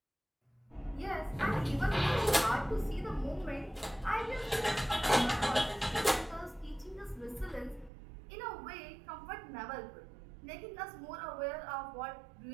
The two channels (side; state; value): left; drops out; at 7.9 s